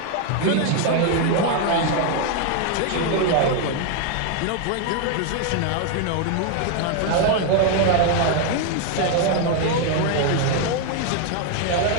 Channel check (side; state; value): both; different; correlation 0.01